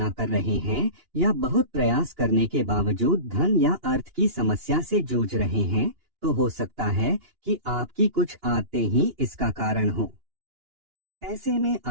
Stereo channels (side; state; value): left; late; 2.8 ms